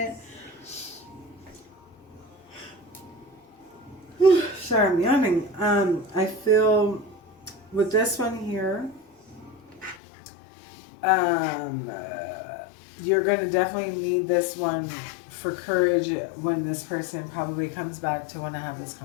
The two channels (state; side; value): drops out; right; at 10.0 s